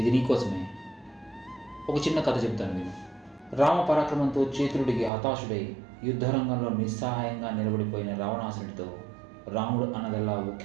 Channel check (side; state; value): left; drops out; at 5.1 s